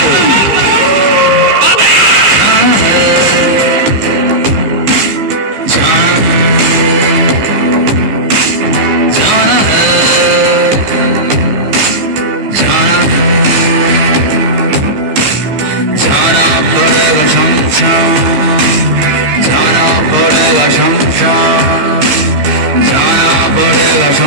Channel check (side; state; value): left; late; 15 ms